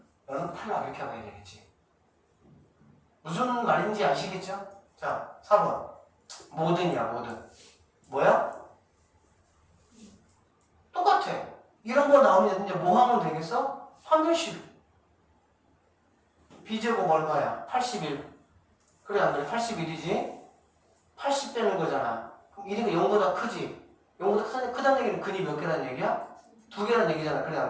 너는 탈락 이렇게 하면 되겠지. 무슨 말인지 아시겠죠? 자 4번 모든이야 모든. 뭐야? 똑같아. 이런 거 나오면 이제 뭐 하면 되겠어? 판별식. b제곱 얼마야? 81. 그래 안 그래? 81이지? 80 되는 거잖아. 그럼 1이가 0보다 크지? 0보다 크다는 얘기는 근이 몇 개라는 얘기야? 2개라는 얘기잖아. 그래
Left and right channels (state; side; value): identical; both; correlation 1.00